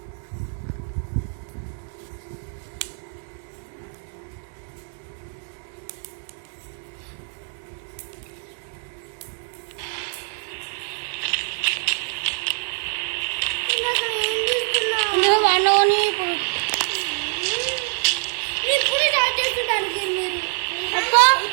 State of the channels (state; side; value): silent; left; 62 dB below the other